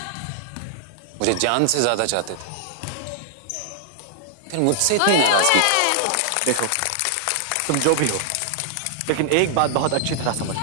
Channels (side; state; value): both; different; correlation -0.01